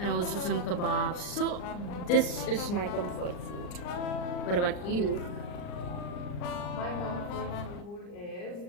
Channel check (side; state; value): right; late; 39 ms